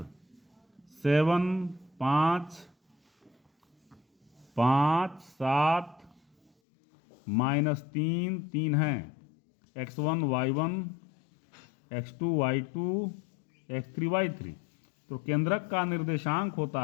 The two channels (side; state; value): right; drops out; at 6.5 s